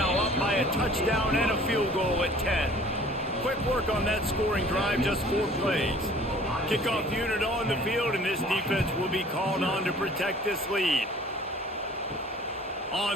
up by a touchdown and a field goal at 10. Quick work on that scoring drive, just 4 plays. Kickoff unit on the field, and this defense will be called on to protect this lead.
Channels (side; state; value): both; normal; correlation 0.50